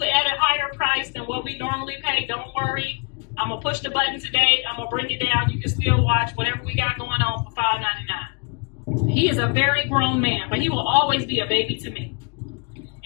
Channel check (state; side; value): quieter; right; 33.7 dB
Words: at a higher price than what we normally pay, don't worry. I'm gonna push the button today. I'm gonna bring it down. You can still watch whatever we got going on for $5.99. He is a very grown man, but he will always be a baby to me.